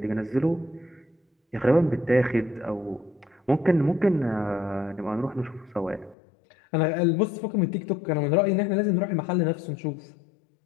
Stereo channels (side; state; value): right; drops out; at 6.2 s